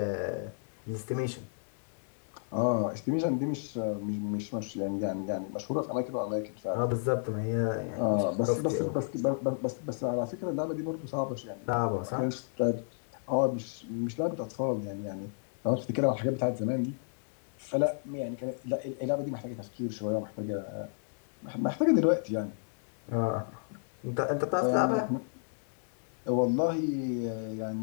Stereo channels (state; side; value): silent; right; 56 dB below the other